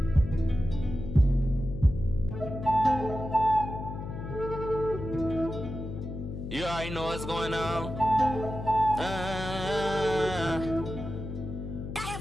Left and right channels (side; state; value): left; noise; hum, 7 dB below the sound